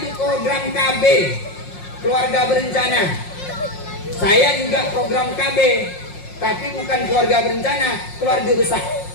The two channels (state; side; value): late; right; 5.6 ms